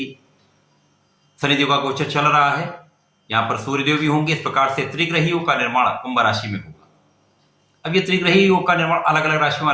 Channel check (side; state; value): both; identical; correlation 1.00